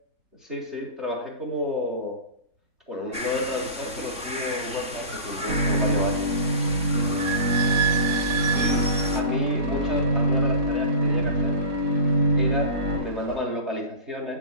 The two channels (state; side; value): late; left; 3.6 ms